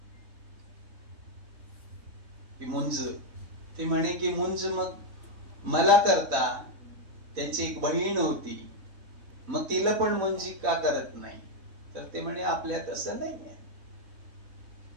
की मुंज, ते म्हणे की मुंज मग मला करता, त्यांची एक बहीण होती, मग तिला पण मुंजी का करत नाही. तर ते म्हणे आपल्यात असं नाही आहे.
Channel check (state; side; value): late; left; 3.6 ms